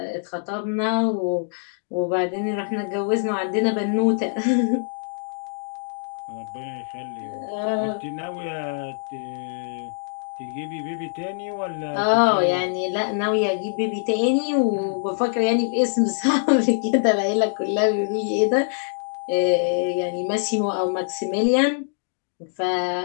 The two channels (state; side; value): silent; right; digital silence